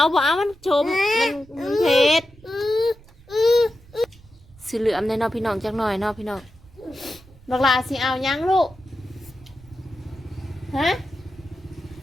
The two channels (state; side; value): noise; right; rumble, 24 dB below the sound